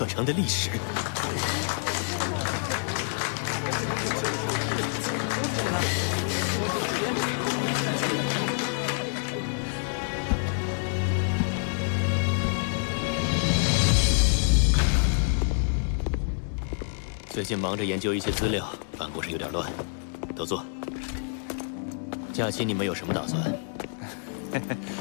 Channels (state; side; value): silent; right; 60 dB below the other